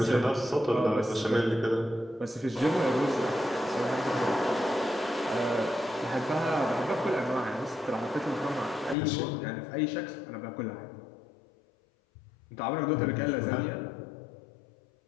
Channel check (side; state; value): right; drops out; at 9.0 s